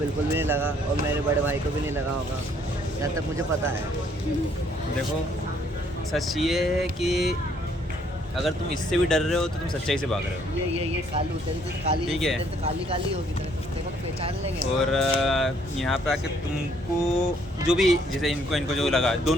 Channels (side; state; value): both; normal; correlation 0.65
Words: भी नहीं लगा, और मेरे बड़े भाई को भी नहीं लगा होगा, जहाँ तक मुझे पता है। देखो, सच ये है कि अगर तुम इससे भी डर रहे हो तो तुम सच्चाई से भाग रहे हो। ये कालू तेरी तो काली, ठीक है। तेरी तो काली काली होगी, तेरे को पहचान लेंगे। और यहाँ पे आके तुमको जो भी, जैसे इनको जो लगा,